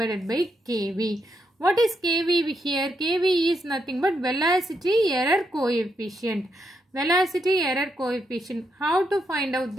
by kV. What is kV here? kV is nothing but velocity error coefficient. Velocity error coefficient. How to find out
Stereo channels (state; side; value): normal; both; correlation 0.80